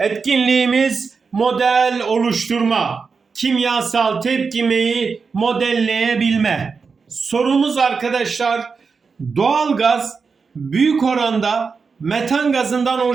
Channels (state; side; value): quieter; left; 5.1 dB